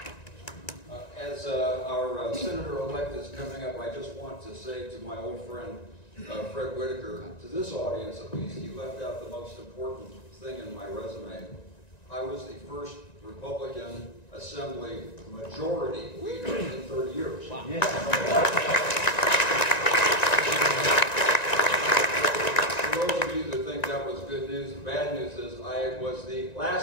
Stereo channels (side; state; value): right; late; 1.9 ms